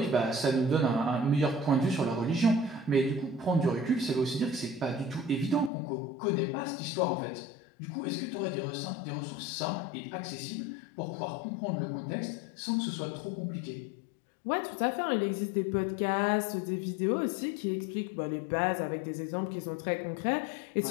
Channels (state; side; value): drops out; right; at 5.7 s